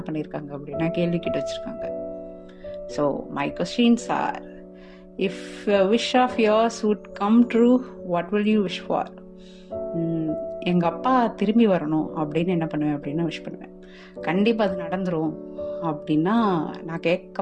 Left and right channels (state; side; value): identical; both; correlation 1.00